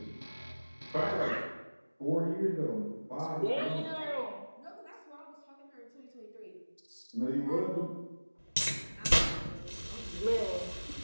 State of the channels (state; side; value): inverted; both; correlation -1.00